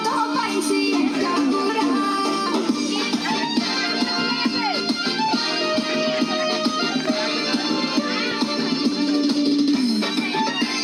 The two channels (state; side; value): identical; both; correlation 1.00